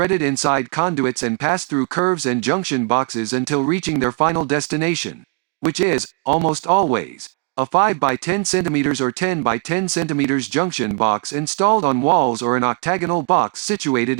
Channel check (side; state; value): left; quieter; 37.2 dB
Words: inside conduits and pass through curves and junction boxes until reaching their final destination, which is, almost always, a 5 by 10 cm or 10 by 10 cm junction box installed on walls or an octagonal box